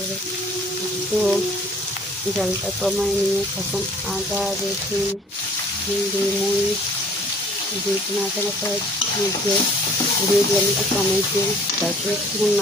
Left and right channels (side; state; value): both; normal; correlation 0.54